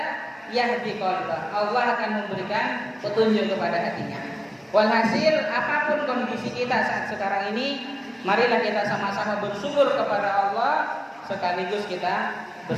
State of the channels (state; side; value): identical; both; correlation 1.00